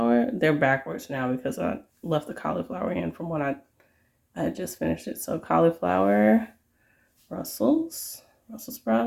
They're backwards now because I left the cauliflower in from when I had just finished it. So cauliflower, Brussels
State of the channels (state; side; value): identical; both; correlation 1.00